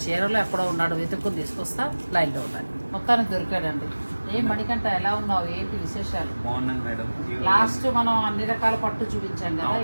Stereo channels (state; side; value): inverted; both; correlation -1.00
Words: చీరలో ఎక్కడో ఉన్నాడో వెతుక్కుని తీసుకొస్తా. లైన్ లో ఉండాలి. మొత్తానికి దొరికాడండి. ఏం మణికంఠ, ఎలా ఉన్నావు, ఏంటి విశేషాలు? బాగున్నాను మేడం. లాస్ట్ మనం అన్ని రకాల పట్టు చూపించాం కదా,